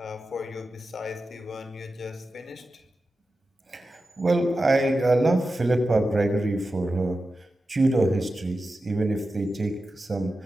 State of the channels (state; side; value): normal; both; correlation 0.92